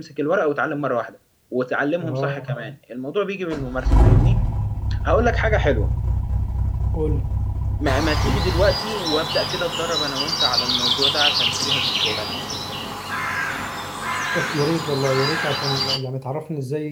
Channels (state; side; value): identical; both; correlation 1.00